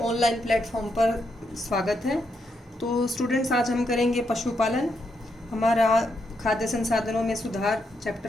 ऑनलाइन प्लेटफॉर्म पर स्वागत है। तो स्टूडेंट्स, आज हम करेंगे पशुपालन। हमारा खाद्य संसाधनों में सुधार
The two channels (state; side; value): normal; both; correlation 0.80